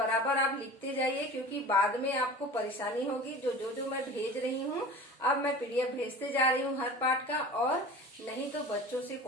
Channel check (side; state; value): both; normal; correlation 0.38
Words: आप लिखते जाइए, क्योंकि बाद में आपको परेशानी होगी। जो मैं भेज रही हूँ, अब मैं पीडीएफ भेजते जा रही हूँ हर पाठ का, और नहीं तो बच्चों से